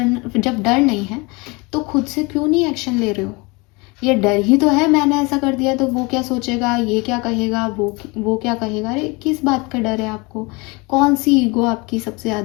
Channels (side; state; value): right; quieter; 26.7 dB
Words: जब डर नहीं है तो खुद से क्यों नहीं एक्शन ले रहे हो? ये डर ही तो है, मैंने ऐसा कर दिया तो वो क्या सोचेगा, ये क्या कहेगा, वो क्या कहेगा। अरे किस बात का डर है आपको? कौन सी ईगो आपकी सबसे